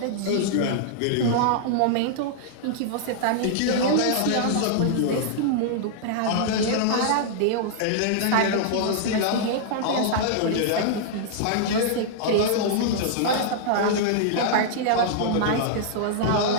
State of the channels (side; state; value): both; different; correlation -0.01